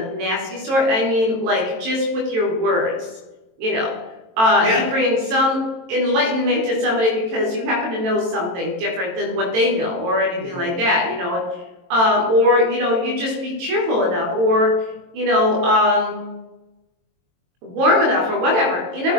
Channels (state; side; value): late; left; 22 ms